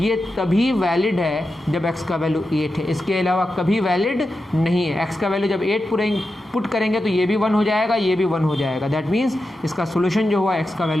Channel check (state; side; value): normal; both; correlation 0.90